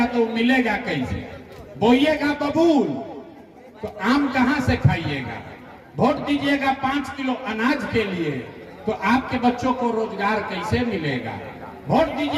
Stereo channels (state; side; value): identical; both; correlation 1.00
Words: तो मिलेगा कैसे? बोइएगा बबूल तो आम कहां से खाइएगा? वोट दीजिएगा 5 किलो अनाज के लिए, तो आपके बच्चों को रोजगार कैसे मिलेगा? वोट